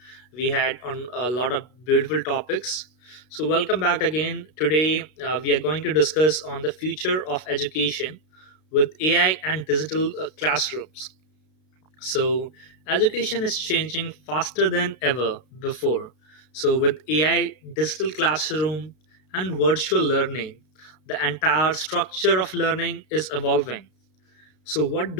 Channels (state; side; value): late; right; 32 ms